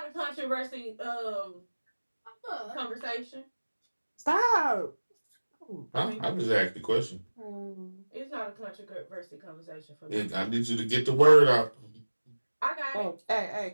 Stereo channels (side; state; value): both; inverted; correlation -1.00